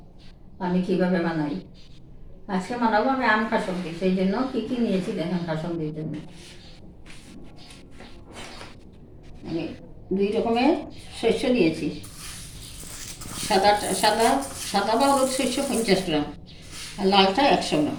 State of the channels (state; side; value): identical; both; correlation 1.00